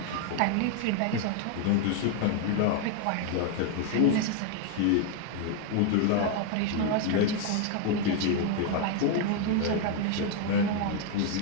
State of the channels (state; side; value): different; both; correlation 0.01